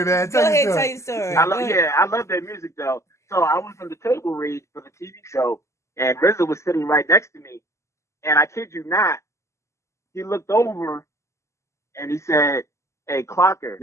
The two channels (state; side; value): late; right; 0.14 ms